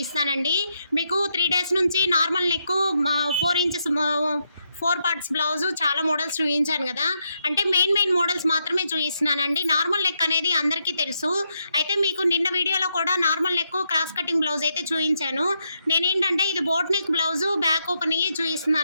మీకు 3 days నుంచి normal neck 4 inches 4 parts blouse చాలా మోడల్స్ చూపించాను కదా. అంటే మెయిన్ మోడల్స్ మాత్రమే చూపిస్తున్నానండి. నార్మల్ నెక్ అనేది అందరికీ తెలుసు. అయితే మీకు నిన్న వీడియోలో కూడా normal neck cross cutting blouse అయితే చూపించాను. నేనేంటంటే ఇది boat neck blouse back open అయ్యి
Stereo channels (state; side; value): inverted; both; correlation -0.80